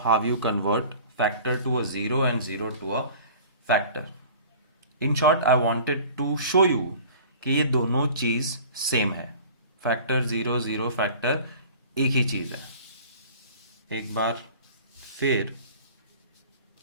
you convert factor to a 0 and 0 to a factor. In short, I wanted to show you कि ये दोनों चीज़ same है. Factor 0 0 factor एक ही चीज़ है. एक बार फिर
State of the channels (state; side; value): inverted; both; correlation -0.44